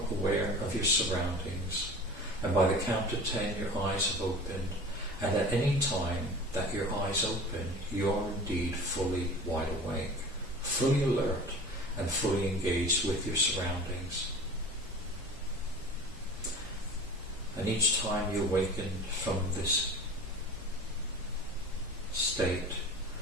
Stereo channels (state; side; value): normal; both; correlation 0.38